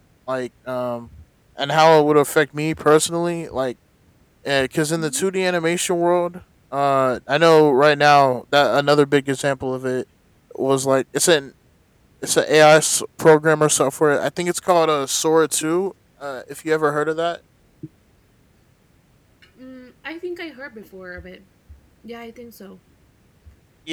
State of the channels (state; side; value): identical; both; correlation 1.00